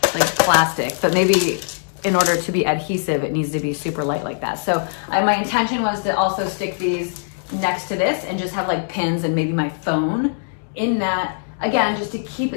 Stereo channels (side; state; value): right; silent; digital silence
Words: plastic. But maybe in order to be adhesive, it needs to be super light like that. So my intention was to also stick these next to this and just have like pins and maybe my phone in that. Again, just to keep